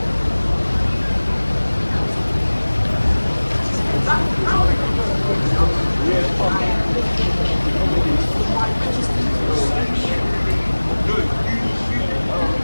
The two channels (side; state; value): both; inverted; correlation -1.00